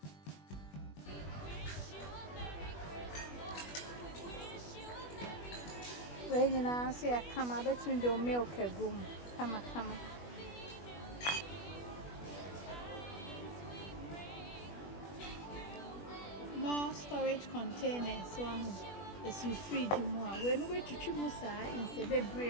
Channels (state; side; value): late; right; 21 ms